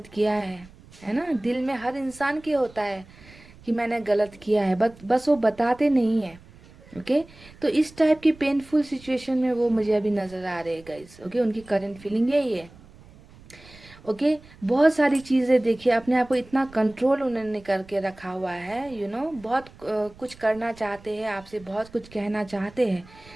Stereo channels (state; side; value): noise; right; rumble, 23 dB below the sound